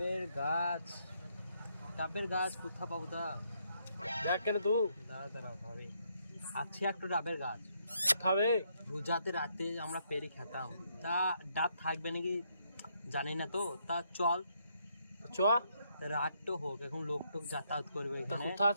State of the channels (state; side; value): inverted; both; correlation -0.74